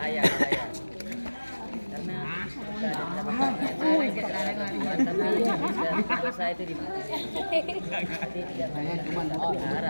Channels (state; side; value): inverted; both; correlation -1.00